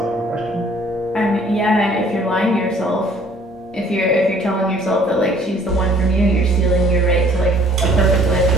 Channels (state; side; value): normal; both; correlation 0.57